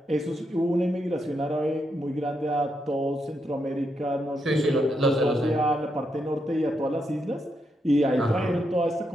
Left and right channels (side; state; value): both; normal; correlation 0.81